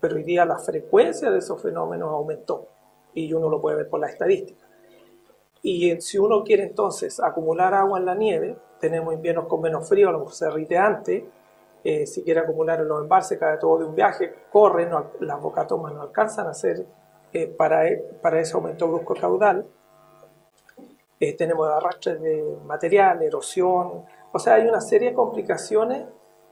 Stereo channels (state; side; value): identical; both; correlation 1.00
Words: hoy día la frecuencia de esos fenómenos aumentó y uno lo puede ver por la estadística. Y si uno quiere entonces acumular agua en la nieve, tenemos inviernos con menos frío, a lo mejor se derrite antes, si quiere acumular en los embalses, cae todo de un viaje, corre, las bocatomas no alcanzan a hacer para ese aumento brusco caudal. Tenemos arrastres de material, erosión, o sea, hay una serie de complicaciones